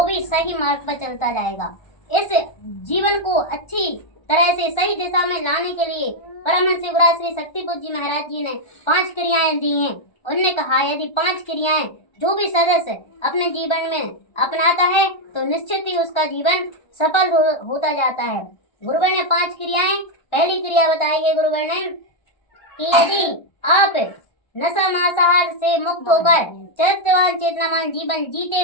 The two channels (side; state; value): right; late; 1.3 ms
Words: भी सही मार्ग पर चलता जाएगा। इस जीवन को अच्छी तरह से सही दिशा में लाने के लिए परमहंस युवराज श्री शक्तिपुंज जी महाराज जी ने 5 क्रियाएं दी हैं। उन्होंने कहा यदि 5 क्रियाएं जो भी सदस्य अपने जीवन में अपनाता है तो निश्चित ही उसका जीवन सफल होता जाता है। गुरुवर ने 5 क्रियाएं, पहली क्रिया बताई है गुरुवर ने कि यदि आप नशा मांसाहार से मुक्त होकर चरित्रवान चेतनावान जीवन जीते